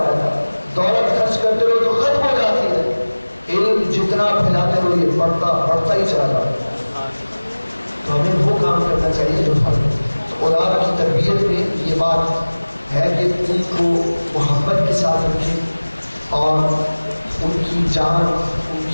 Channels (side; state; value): both; inverted; correlation -1.00